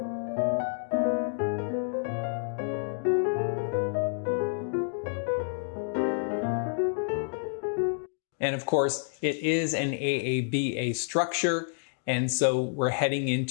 And of course, it is an AABA structure, and so we're heading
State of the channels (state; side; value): silent; right; digital silence